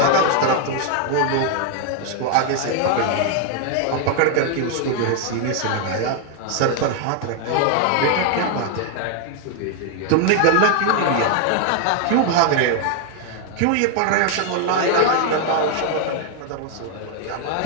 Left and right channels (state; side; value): different; both; correlation 0.00